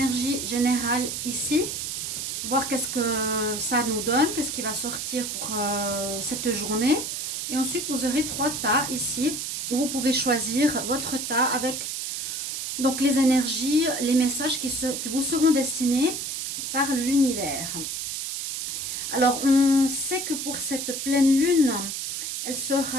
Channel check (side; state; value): right; noise; hiss, 4 dB below the sound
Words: générales ici. Voir qu'est-ce que ça nous donne, qu'est-ce qui va sortir pour cette journée. Et ensuite, vous aurez 3 tas ici, où vous pouvez choisir votre tas avec donc les énergies, les messages qui vous seront destinés par l'univers. Alors, on sait que pour cette pleine lune, elle